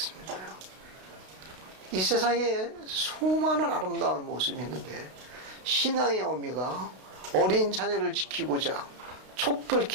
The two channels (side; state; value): left; late; 32 ms